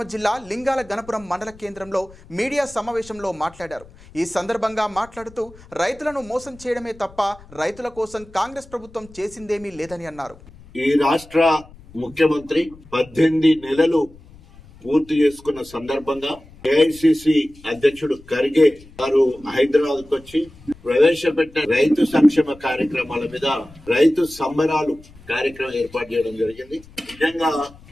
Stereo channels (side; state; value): left; noise; rumble, 22 dB below the sound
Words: జిల్లా లింగాల గణపురం మండల కేంద్రంలో మీడియా సమావేశంలో మాట్లాడారు. ఈ సందర్భంగా మాట్లాడుతూ రైతులను మోసం చేయడమే తప్ప రైతుల కోసం కాంగ్రెస్ ప్రభుత్వం చేసిందేమీ లేదని అన్నారు. ఈ రాష్ట్ర ముఖ్యమంత్రి 18 నెలలు పూర్తి చేసుకున్న సందర్భంగా ఏఐసిసి అధ్యక్షుడు ఖర్గే గారు హైదరాబాద్ కు వచ్చి ప్రవేశపెట్టిన రైతు సంక్షేమ కార్యక్రమాల మీద రైతు సంబరాలు కార్యక్రమం ఏర్పాటు చేయడం జరిగింది. నిజంగా